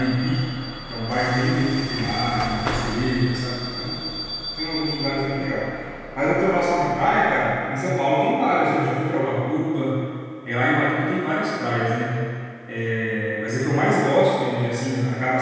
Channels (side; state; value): both; identical; correlation 1.00